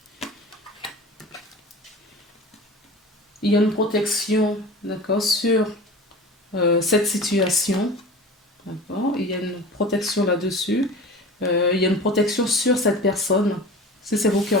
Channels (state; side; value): normal; both; correlation 0.35